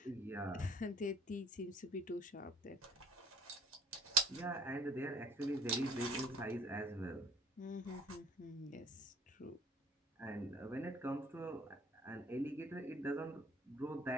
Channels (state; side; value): normal; both; correlation 0.51